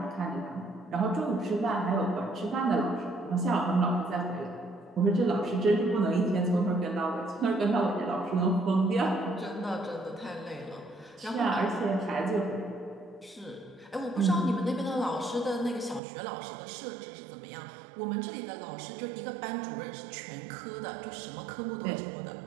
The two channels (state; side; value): drops out; left; at 16.0 s